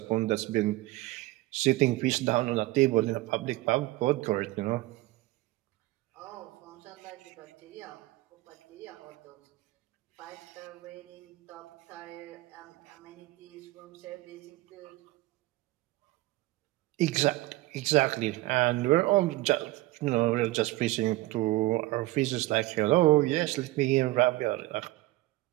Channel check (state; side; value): quieter; left; 18.8 dB